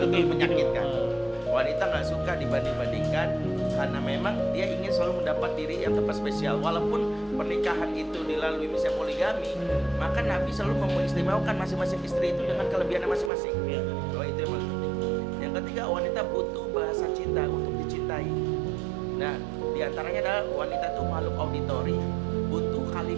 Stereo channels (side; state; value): left; drops out; at 13.3 s